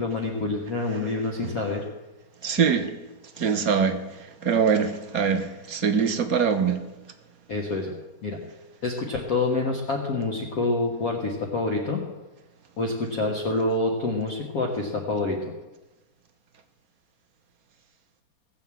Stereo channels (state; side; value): late; right; 4.3 ms